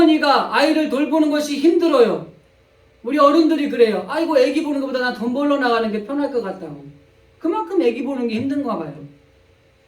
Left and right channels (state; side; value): identical; both; correlation 1.00